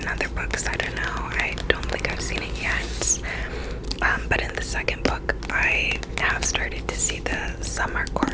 other books. I don't know. I don't think I've seen it yet. But in the second book, I have started to see the summer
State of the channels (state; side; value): identical; both; correlation 1.00